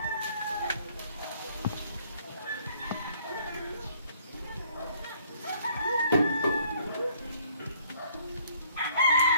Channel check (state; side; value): inverted; both; correlation -0.62